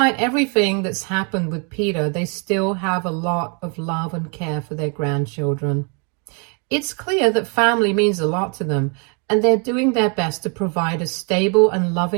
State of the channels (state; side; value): quieter; left; 36.4 dB